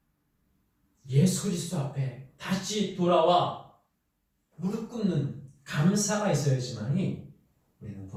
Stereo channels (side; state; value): both; identical; correlation 1.00